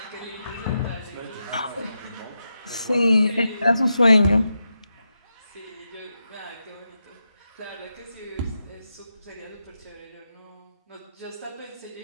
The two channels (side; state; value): both; inverted; correlation -0.88